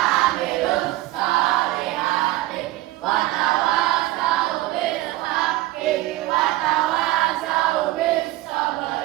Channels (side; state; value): left; quieter; 17.2 dB